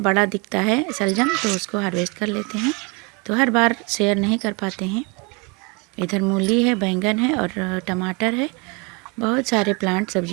दिखता है सलजम, तो उसको हार्वेस्ट कर लेते हैं। तो हर बार शेयर नहीं कर पाते हैं। इधर मूली है, बैंगन है और टमाटर है। बहुत सारे प्लांट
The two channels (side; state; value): left; quieter; 29.4 dB